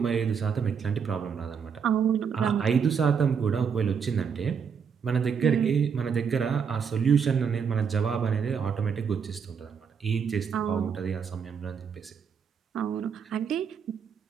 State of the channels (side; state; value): left; quieter; 6.7 dB